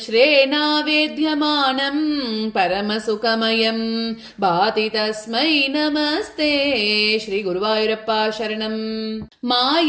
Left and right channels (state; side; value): identical; both; correlation 1.00